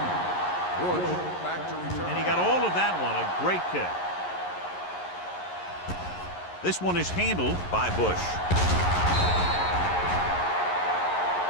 Bush back to return. And he got all of that one. A great kick. This one is handled by Bush.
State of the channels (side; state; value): right; late; 11 ms